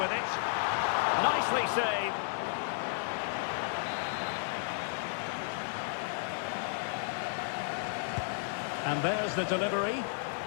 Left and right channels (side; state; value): right; silent; 56 dB below the other